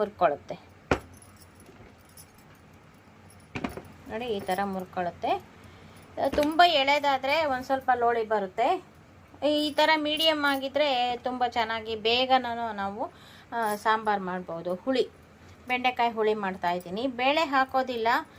ನೋಡಿ. ಈ ಥರ ಮುರ್ಕೊಳ್ಳುತ್ತೆ. ತುಂಬ ಎಳೆದಾದರೆ ಒಂದು ಸ್ವಲ್ಪ ಲೋಳಿ ಬರುತ್ತೆ. ಈ ಥರ ಮೀಡಿಯಮ್ ಆಗಿದ್ದರೆ ತುಂಬ ಚೆನ್ನಾಗಿ ಬೇಗನೂ ನಾವು ಸಾಂಬಾರು ಮಾಡ್ಬೋದು. ಹುಳಿ ಬೆಂಡೆಕಾಯಿ ಹುಳಿ ಮಾಡ್ತಾಯಿದ್ದೀನಿ. ಬೇಳೆ ಹಾಕೋದಿಲ್ಲ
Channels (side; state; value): both; identical; correlation 1.00